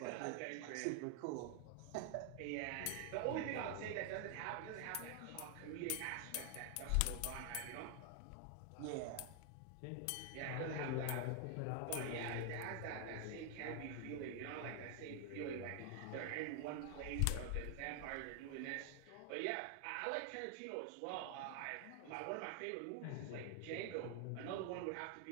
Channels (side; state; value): both; different; correlation 0.00